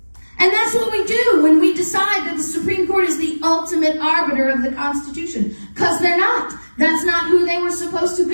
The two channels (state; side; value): inverted; both; correlation -1.00